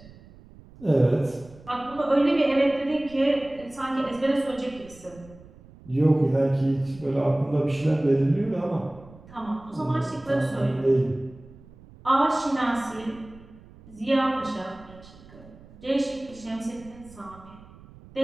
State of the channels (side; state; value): right; noise; rumble, 22 dB below the sound